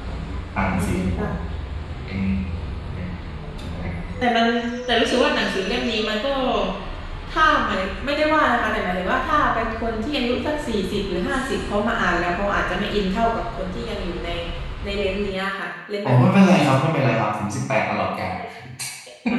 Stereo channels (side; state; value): both; identical; correlation 1.00